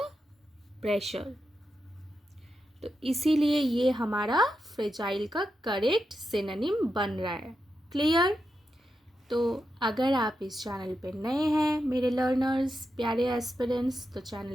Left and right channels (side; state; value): both; normal; correlation 0.87